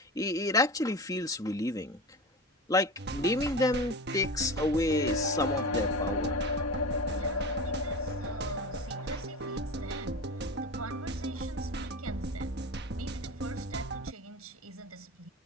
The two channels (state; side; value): normal; both; correlation 0.30